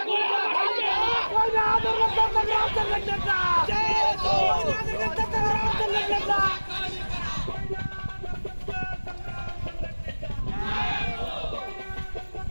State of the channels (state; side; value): inverted; both; correlation -1.00